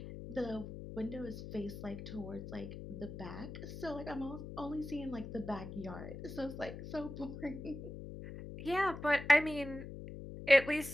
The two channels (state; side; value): noise; left; hum, 10 dB below the sound